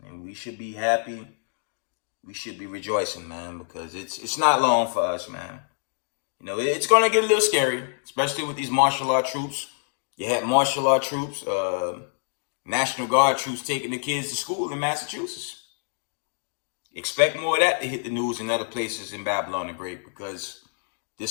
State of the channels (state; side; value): silent; right; digital silence